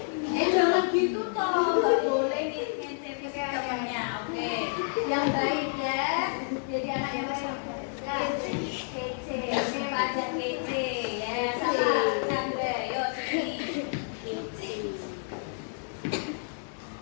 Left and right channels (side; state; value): right; silent; digital silence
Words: Jangan gitu toh, nggak boleh ngintip temannya. Oke, yang baik ya. Jadi anak yang baik. Kece, ini pelajar kece ya. Sama Chandra, yuk sini.